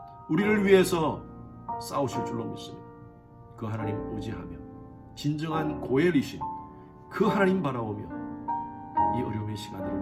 우리를 위해서 싸우실 줄로 믿습니다. 그 하나님 의지하며 진정한 고엘이신 그 하나님 바라보며 이 어려움의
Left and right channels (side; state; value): both; identical; correlation 1.00